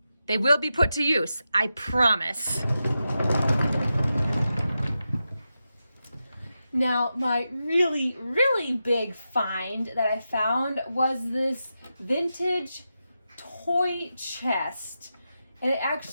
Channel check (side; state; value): both; inverted; correlation -0.89